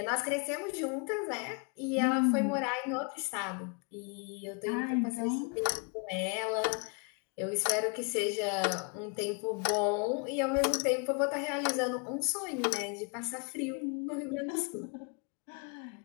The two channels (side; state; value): right; quieter; 34.8 dB